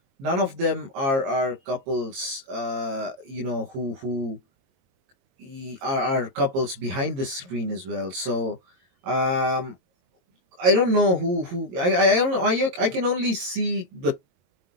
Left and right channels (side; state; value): left; late; 22 ms